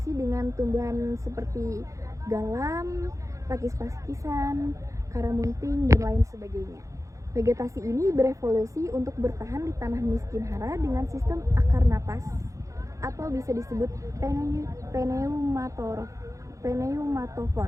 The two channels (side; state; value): left; late; 0.15 ms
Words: dengan tumbuhan seperti galam, pakis-pakisan, karamunting, dan lain sebagainya. Vegetasi ini berevolusi untuk bertahan di tanah miskin hara dengan sistem akar napas atau bisa disebut pneumatofor.